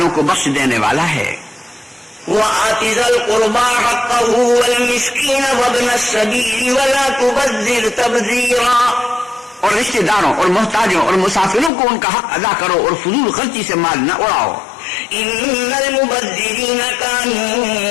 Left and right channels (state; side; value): drops out; right; at 11.7 s